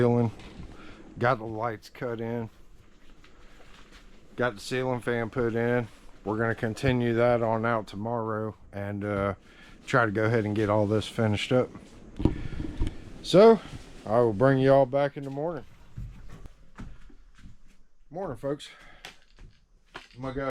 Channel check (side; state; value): both; identical; correlation 1.00